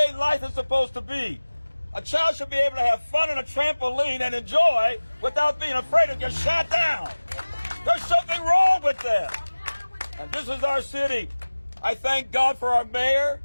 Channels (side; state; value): both; inverted; correlation -1.00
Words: life is supposed to be. A child should be able to have fun on a trampoline and enjoy without being afraid to get shot down. There's something wrong with that. And this is our city. I thank God for our mayor.